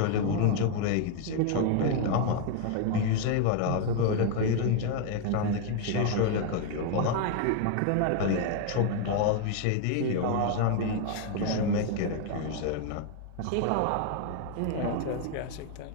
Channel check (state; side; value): different; both; correlation 0.00